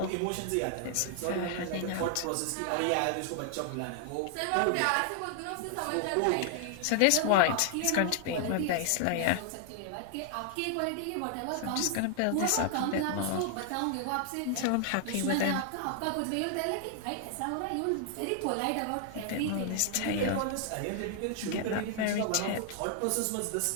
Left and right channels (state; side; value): different; both; correlation 0.00